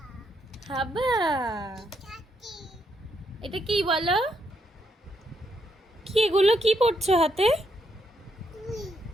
হাবা। চাচি। এটা কি বলো? কি এগুলো কি পড়ছো হাতে? তুই।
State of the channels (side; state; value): both; normal; correlation 0.77